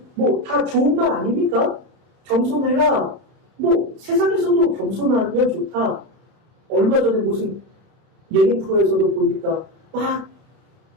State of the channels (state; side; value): late; left; 31 ms